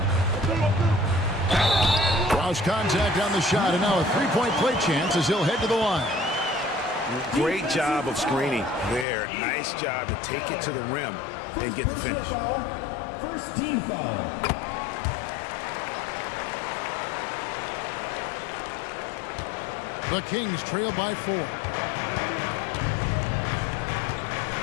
Cross contact on the shot, and now a three-point play chance as he'll head to the line. Great job of screening there. Nice job to take it to the rim and get the finish. First team foul. The Kings trail by 4.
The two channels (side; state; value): right; drops out; at 9.1 s